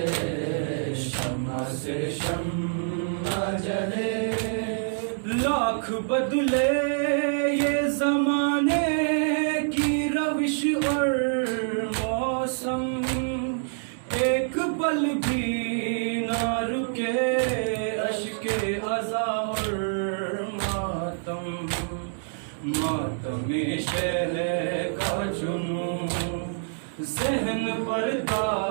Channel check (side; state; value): left; silent; digital silence